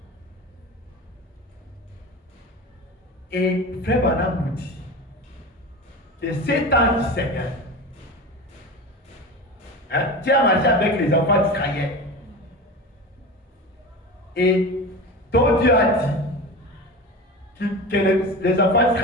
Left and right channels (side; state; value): both; normal; correlation 0.28